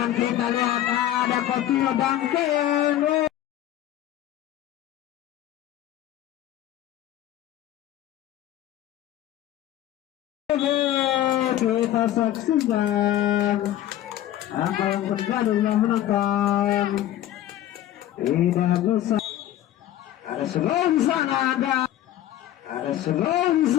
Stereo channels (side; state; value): right; quieter; 12.8 dB